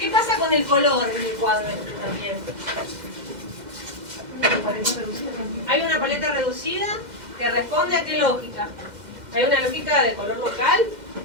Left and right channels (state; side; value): late; left; 2.1 ms